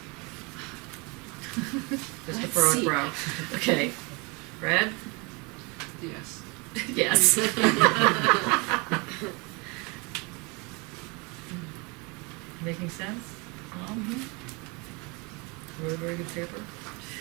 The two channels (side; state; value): left; quieter; 29.2 dB